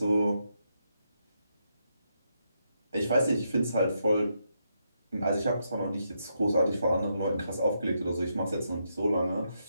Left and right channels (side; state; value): both; inverted; correlation -0.80